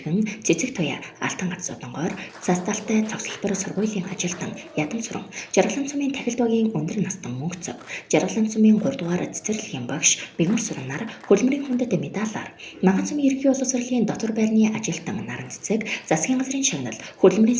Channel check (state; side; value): identical; both; correlation 1.00